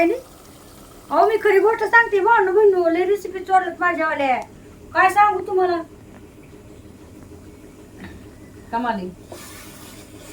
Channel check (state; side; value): identical; both; correlation 1.00